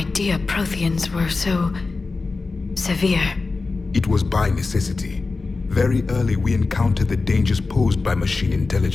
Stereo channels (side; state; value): right; quieter; 3.9 dB